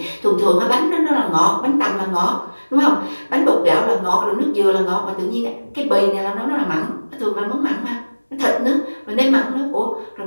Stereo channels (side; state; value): both; inverted; correlation -1.00